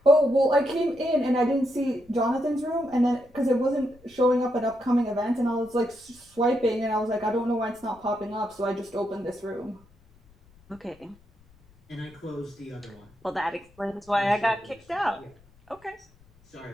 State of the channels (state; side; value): noise; left; rumble, 29 dB below the sound